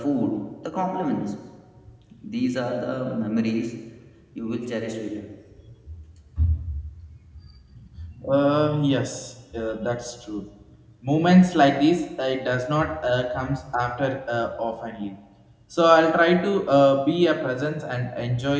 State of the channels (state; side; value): identical; both; correlation 1.00